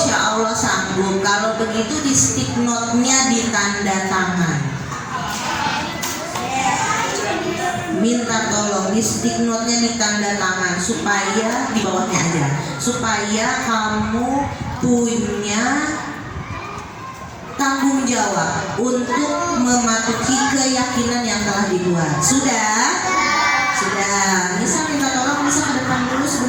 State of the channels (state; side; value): identical; both; correlation 1.00